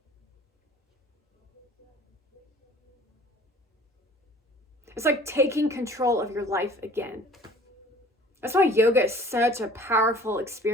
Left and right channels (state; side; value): normal; both; correlation 0.50